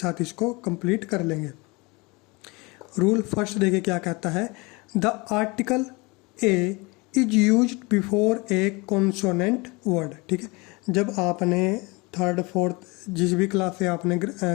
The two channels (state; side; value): quieter; right; 26.0 dB